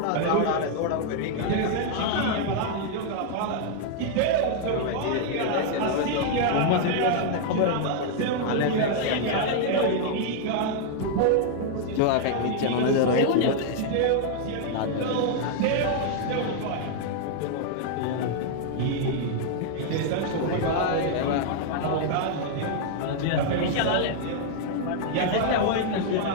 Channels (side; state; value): both; different; correlation 0.00